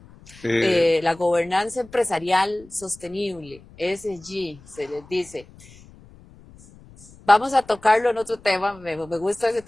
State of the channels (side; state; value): left; noise; rumble, 23 dB below the sound